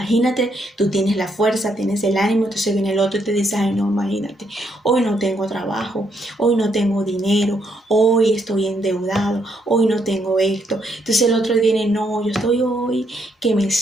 tú tienes la fuerza, tienes el ánimo, entonces viene el otro y te dice, ay no, imagínate, hoy no tengo trabajo, hoy no tengo dinero, hoy estoy endeudado, hoy no tengo esto. Entonces el otro viene, no, yo estoy hoy que me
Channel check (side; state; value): both; normal; correlation 0.74